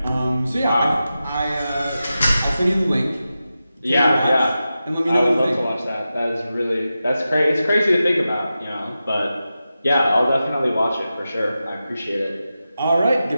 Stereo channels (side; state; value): both; inverted; correlation -0.92